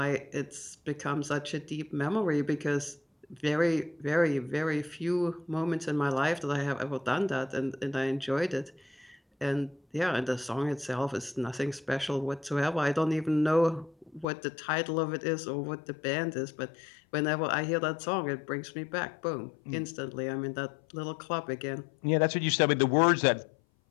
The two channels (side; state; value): right; drops out; at 14.2 s